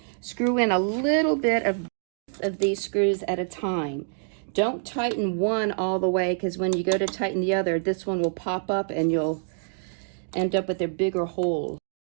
screw in a little bit of these screws at a time. Don't tighten one all the way, because when you go to tighten the other, this one will pop up and you'll end up with a bigger hole.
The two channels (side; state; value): left; silent; digital silence